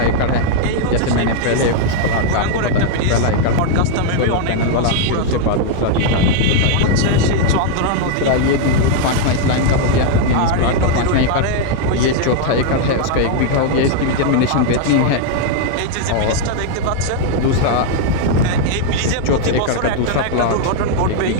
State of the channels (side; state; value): both; different; correlation 0.00